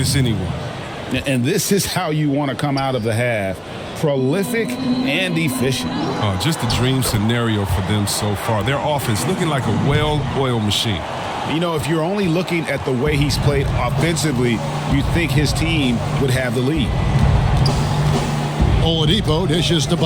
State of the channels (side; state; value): both; identical; correlation 1.00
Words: anyone. And this is how you want to come out of the half. Prolific and efficient. Just a dream scenario for them so far. Their offense looking like a well-oiled machine. You know, if you're only looking at the way he's played offensively, you'd think his team would have the lead. Oladipo dishes to